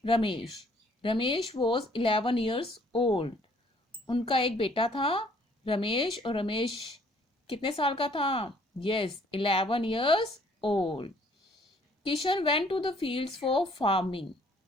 Ramesh. Ramesh was 11 years old। उनका एक बेटा था रमेश। और रमेश कितने साल का था? Yes, 11 years old। Kishan went to the fields for farming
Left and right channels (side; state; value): both; normal; correlation 0.61